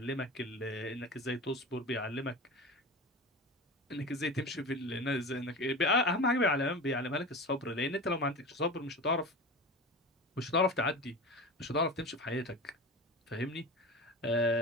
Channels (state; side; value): normal; both; correlation 0.30